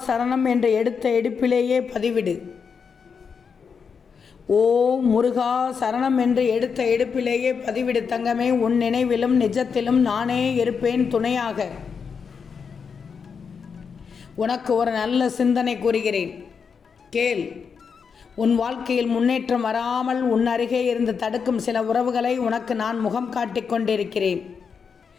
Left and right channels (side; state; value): right; quieter; 6.1 dB